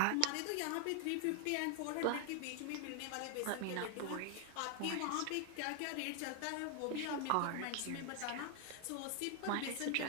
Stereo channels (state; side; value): different; both; correlation 0.00